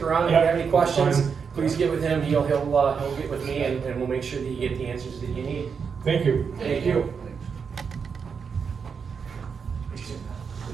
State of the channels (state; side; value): quieter; left; 6.1 dB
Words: around, if you Yeah, have any questions, fine. please get with him, he'll get with me, and we'll make sure that you get the answers that you need. Thank you. Thank you.